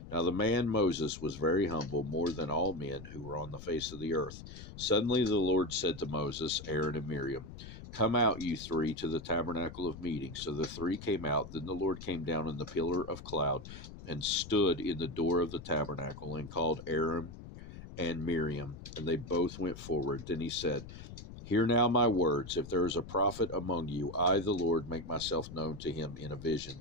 Now the man Moses was very humble, more than all men who were on the face of the earth. Suddenly the Lord said to Moses, Aaron, and Miriam, Come out, you three, to the tabernacle of meeting. So the three came out. Then the Lord came down in the pillar of cloud and stood in the door of the tabernacle and called Aaron and Miriam, and they both went forward. Then he said, Hear now my words. If there is a prophet among you, I, the Lord, make myself known to him in a vision.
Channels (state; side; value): noise; left; rumble, 13 dB below the sound